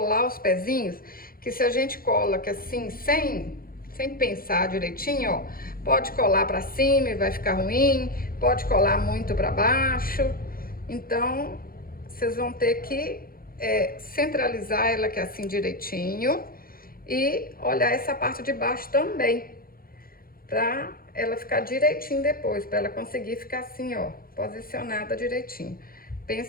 os pezinhos, que se a gente cola aqui assim, sem pensar direitinho, ó, pode colar para cima e vai ficar ruim, pode colar muito para baixo. Então, vocês vão ter que centralizar ela aqui assim direitinho e olhar essa parte de baixo também, pra ela ficar direitinho depois, pra ela conseguir ficar assim, ó, posicionada direitinho.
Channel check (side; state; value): right; late; 0.42 ms